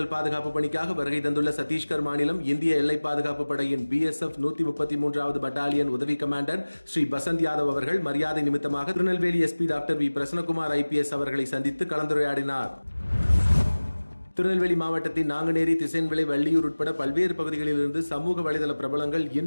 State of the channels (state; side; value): inverted; both; correlation -1.00